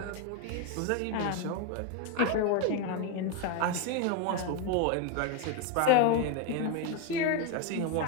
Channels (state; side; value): different; both; correlation 0.02